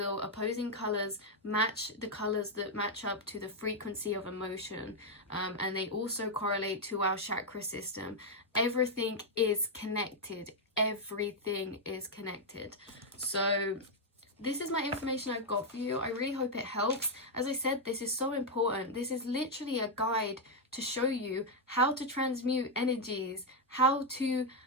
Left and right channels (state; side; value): normal; both; correlation 0.00